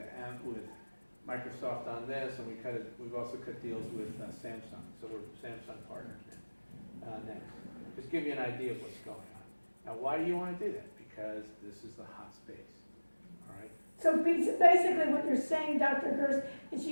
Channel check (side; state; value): both; inverted; correlation -1.00